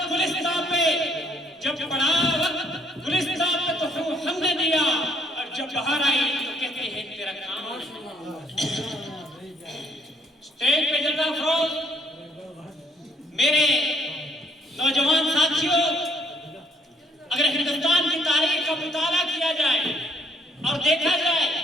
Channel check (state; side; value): normal; both; correlation 0.65